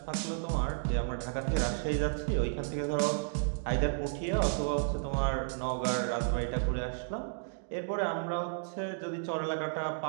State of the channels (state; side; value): silent; left; digital silence